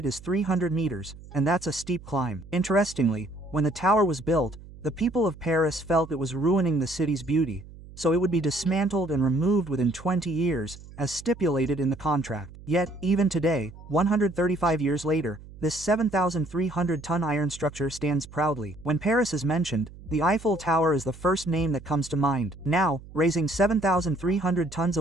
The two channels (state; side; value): noise; right; hum, 18 dB below the sound